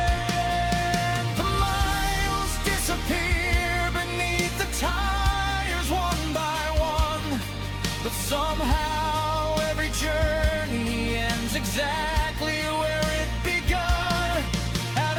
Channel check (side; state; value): both; identical; correlation 1.00